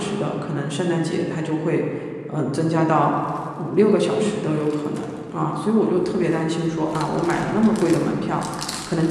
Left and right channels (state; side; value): identical; both; correlation 1.00